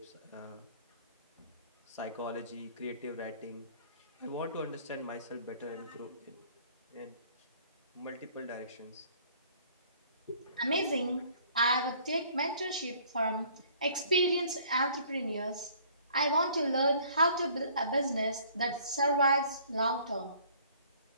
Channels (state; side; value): inverted; both; correlation -0.56